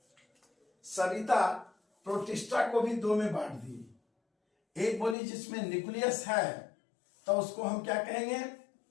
सविता प्रोटिस्टा को भी दो में बांट दी। एक बोली जिसमें न्यूक्लियस है तो उसको हम क्या कहेंगे?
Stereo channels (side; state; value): right; drops out; at 5.2 s